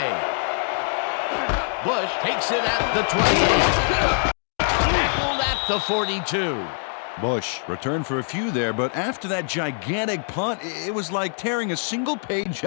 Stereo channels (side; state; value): right; silent; 58 dB below the other